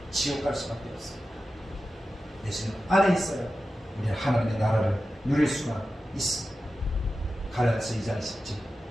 지옥 갈 수밖에 없습니다. 예수님 안에 있어야 우리는 하나님의 나라를 누릴 수가 있습니다. 갈라디아서 2장 20절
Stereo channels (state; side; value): normal; both; correlation 0.93